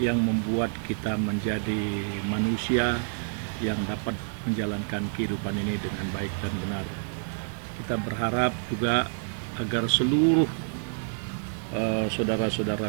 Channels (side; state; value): left; silent; 59 dB below the other